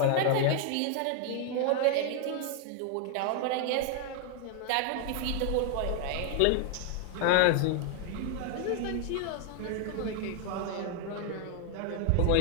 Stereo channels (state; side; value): different; both; correlation 0.00